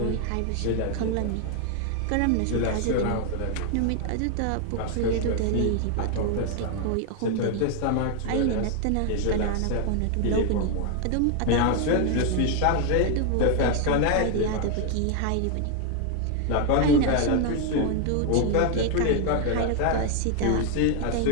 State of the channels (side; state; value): both; different; correlation 0.00